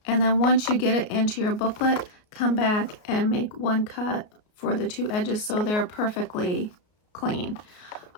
and then once you get it into your booklet, come back and make one cut for the two edges so they're perfectly clean.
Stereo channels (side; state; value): right; late; 33 ms